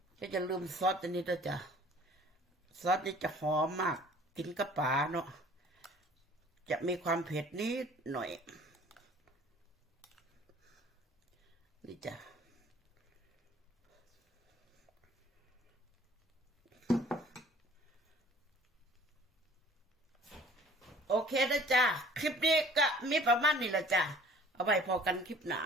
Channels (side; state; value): both; normal; correlation 0.51